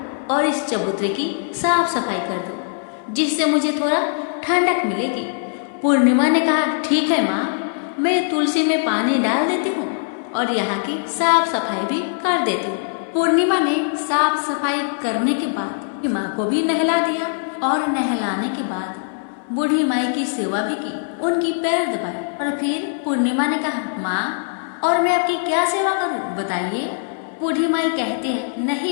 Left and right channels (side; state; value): right; silent; 61 dB below the other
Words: और इस चबूतरे की साफ सफाई कर दो, जिससे मुझे थोड़ा ठंडक मिलेगी। पूर्णिमा ने कहा, ठीक है माँ, मैं तुलसी में पानी डाल देती हूँ और यहाँ की साफ सफाई भी कर देती हूँ। पूर्णिमा ने साफ सफाई करने के बाद माँ को भी नहला दिया और नहलाने के बाद बूढ़ी माई की सेवा भी की, उनकी पैर दबाए और फिर पूर्णिमा ने कहा, माँ, और मैं आपकी क्या सेवा करूँ, बताइए। बूढ़ी माई कहती है,